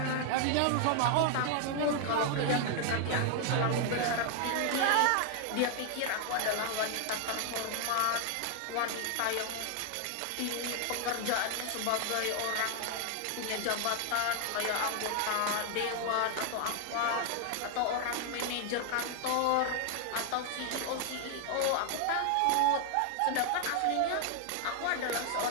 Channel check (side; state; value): both; different; correlation 0.00